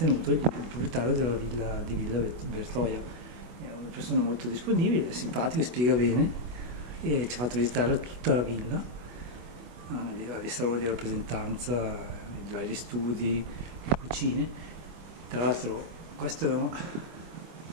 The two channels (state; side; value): late; left; 24 ms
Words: il proprietario della villa di Villa Bertoia. È una persona molto disponibile, simpatico, spiega bene e ci ha fatto visitare tutta la villa, i saloni di rappresentanza, i vari studi, le cucine. Tra l'altro questo è non